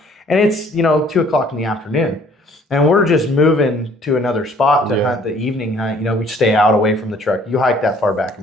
and it's, you know, 2 o'clock in the afternoon. And we're just moving to another spot to hunt the evening hunt. You know, we stay out away from the truck. You hike that far back, I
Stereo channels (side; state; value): both; normal; correlation 0.58